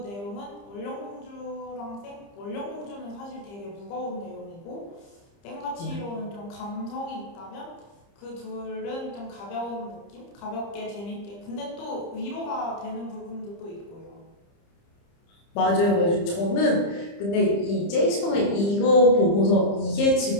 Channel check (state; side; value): late; right; 30 ms